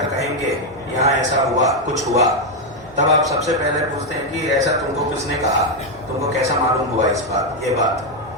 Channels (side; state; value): right; noise; hum, 27 dB below the sound